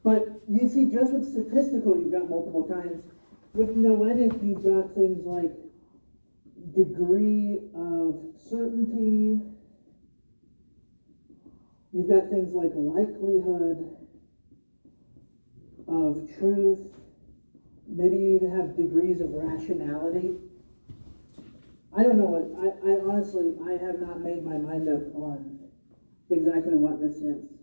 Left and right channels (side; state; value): both; inverted; correlation -1.00